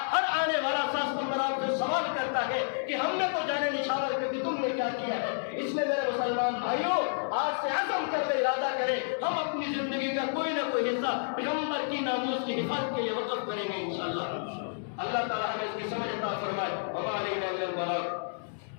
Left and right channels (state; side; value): silent; right; digital silence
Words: ہر آنے والا 7 ستمبر آپ سے سوال کرتا ہے کہ ہم نے تو جانے نشاور کر دی، تم نے کیا کیا ہے؟ اس لیے میرے مسلمان بھائیوں، آج سے عزم کر لے، ارادہ کریں، ہم اپنی زندگی کا کوئی نہ کوئی حصہ پیغمبر کی ناموس کی حفاظت کے لیے وقف کریں گے انشاءاللہ۔ اللہ تعالیٰ ہمیں اس کی سمجھ عطا فرمائے۔ وما علینا الا البلاغ۔